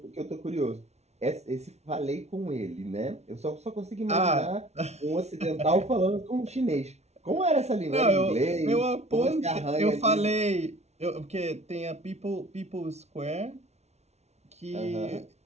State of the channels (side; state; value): left; late; 0.31 ms